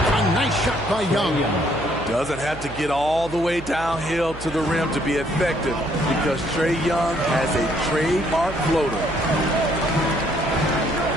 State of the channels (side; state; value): right; noise; hum, 13 dB below the sound